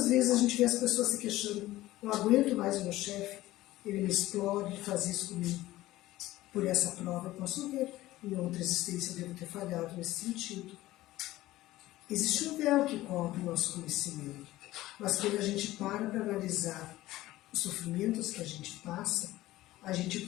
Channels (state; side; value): quieter; right; 16.6 dB